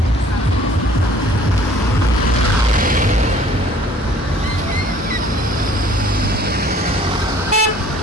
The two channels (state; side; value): normal; both; correlation 0.54